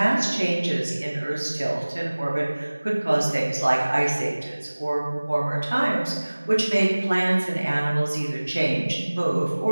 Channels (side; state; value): both; inverted; correlation -1.00